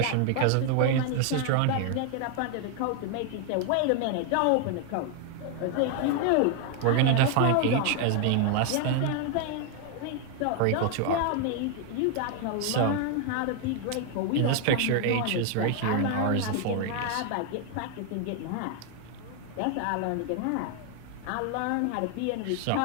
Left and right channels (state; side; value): different; both; correlation 0.01